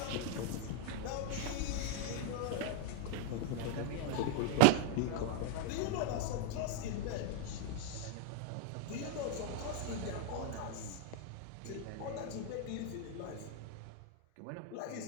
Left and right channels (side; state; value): both; different; correlation 0.00